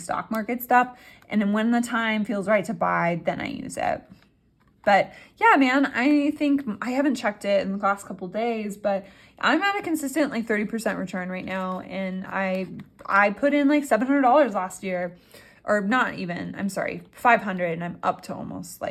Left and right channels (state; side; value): identical; both; correlation 1.00